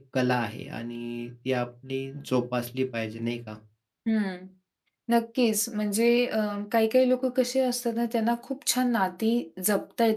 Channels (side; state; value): both; identical; correlation 1.00